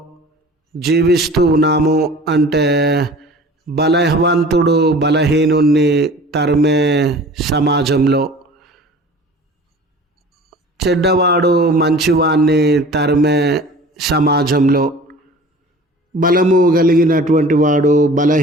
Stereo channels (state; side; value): normal; both; correlation 0.43